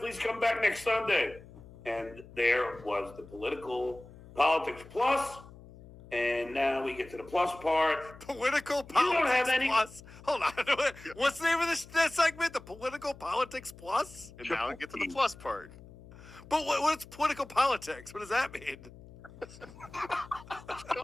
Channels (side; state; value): left; noise; hum, 19 dB below the sound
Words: come back next Sunday. And there was the Politics Plus. And now we get to the plus part. Political Politics You don't have any... Plus. Hold on. What's the name of that segment? The Political Politics Plus? And now we get to the plus part. But what's political politics? What does that mean?